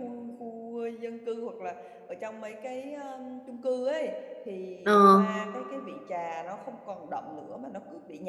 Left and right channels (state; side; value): identical; both; correlation 1.00